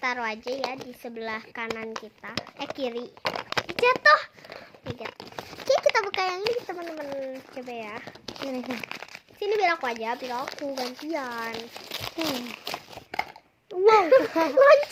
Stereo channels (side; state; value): both; identical; correlation 1.00